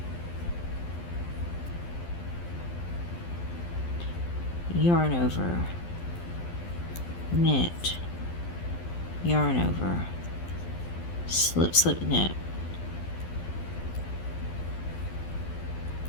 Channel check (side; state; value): right; late; 12 ms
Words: yarn over, knit, yarn over, slip, slip, knit,